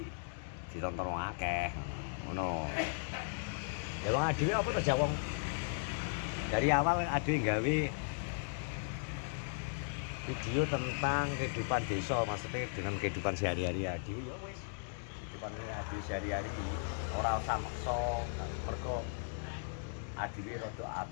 ditonton wong akeh ngono. Ya wong adewe apa to jawong dari awal adewe gawe video tentang kehidupan desa, maksudnya dengan kehidupan sehari-hari adewe ya wis kehidupan adewe sehari-hari ora usah maksa mergo adewe rada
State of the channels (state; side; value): silent; right; digital silence